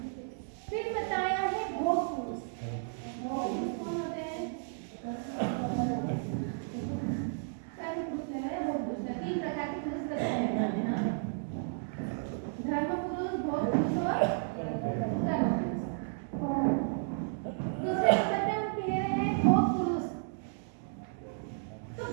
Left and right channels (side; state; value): left; silent; digital silence